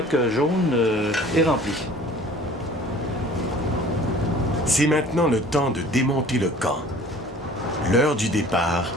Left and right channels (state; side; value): normal; both; correlation 0.48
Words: jaune est rempli. C'est maintenant le temps de démonter le camp. L'heure du départ